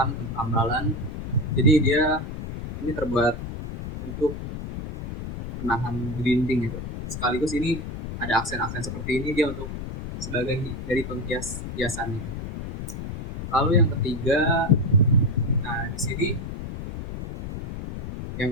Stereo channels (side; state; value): left; noise; rumble, 7 dB below the sound